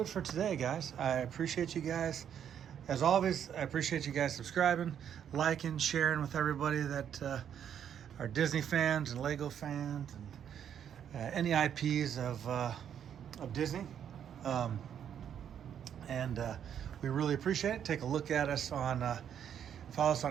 it for today, guys. I appreciate you guys. As always, I appreciate you guys subscribing, liking, sharing with everybody that are Disney fans and Lego fans and any IPs of Disney. We really appreciate it. Take a look at us on, follow us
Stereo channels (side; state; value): left; quieter; 9.0 dB